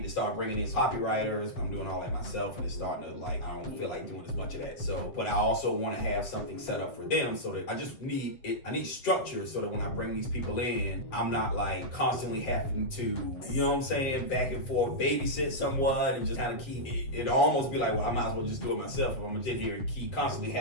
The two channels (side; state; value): right; late; 7.8 ms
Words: to start bringing in copywriters. I'm doing all that myself, and it's starting to like, I don't feel like doing as much of that. So, but I also want to have something set up for them so that I just need it. I need structure so that when I bring these people in, I'm not like constantly having to, you know what I'm saying, back and forth, babysit someone and just kind of keep it. It'll almost be like, well, I might as well just do it myself. If I'm gonna sit here and constantly